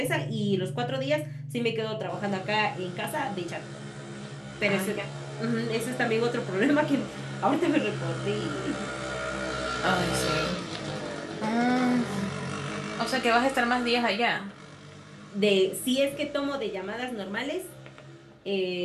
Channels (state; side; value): identical; both; correlation 1.00